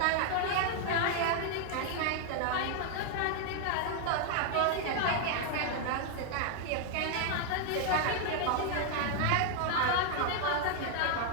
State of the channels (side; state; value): both; different; correlation 0.00